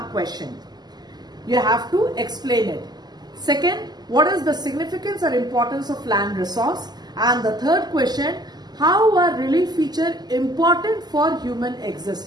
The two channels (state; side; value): late; left; 0.20 ms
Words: question. You have to explain it. Second, what is the significance or importance of land resource? And the third question, how are relief features important for human